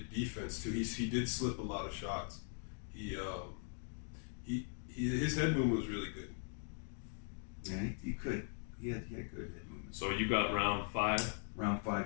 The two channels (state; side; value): silent; right; 51 dB below the other